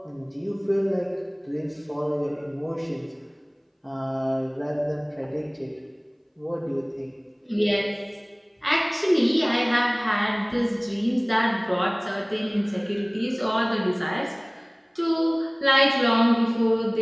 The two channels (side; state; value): both; identical; correlation 1.00